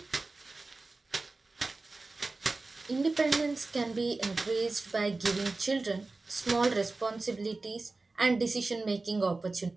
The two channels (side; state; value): left; quieter; 3.5 dB